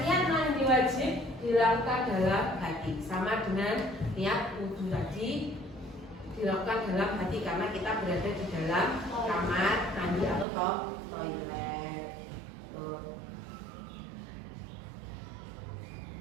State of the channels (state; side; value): drops out; left; at 10.5 s